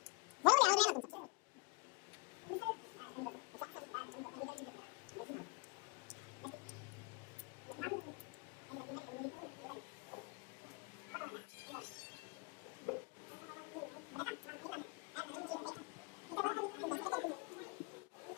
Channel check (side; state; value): right; quieter; 29.3 dB